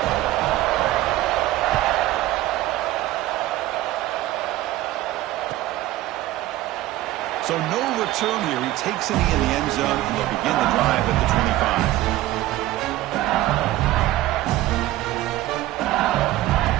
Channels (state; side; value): quieter; left; 15.7 dB